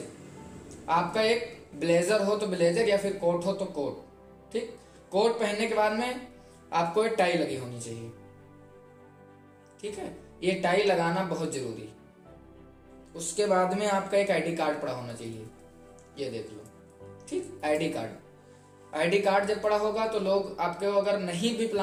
आपका एक ब्लेजर हो तो ब्लेजर या फिर कोट हो तो कोट। ठीक, कोट पहनने के बाद में आपको एक टाई लगी होनी चाहिए। ठीक है, ये टाई लगाना बहुत जरूरी। उसके बाद में आपका एक आईडी कार्ड पड़ा होना चाहिए, ये देख लो। ठीक, आईडी कार्ड जब पड़ा होगा तो लोग आपके अगर नहीं भी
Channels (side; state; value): both; identical; correlation 1.00